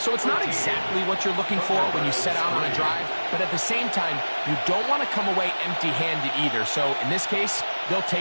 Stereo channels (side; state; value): both; inverted; correlation -1.00